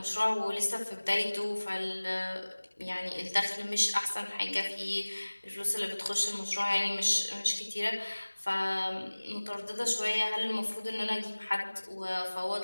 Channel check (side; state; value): both; inverted; correlation -1.00